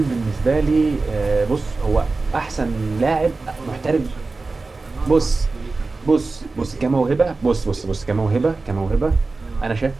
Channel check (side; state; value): left; quieter; 3.7 dB